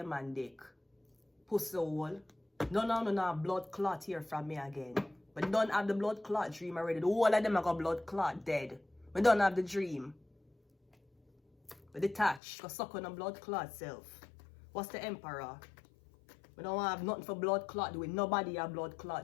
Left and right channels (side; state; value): right; drops out; at 12.4 s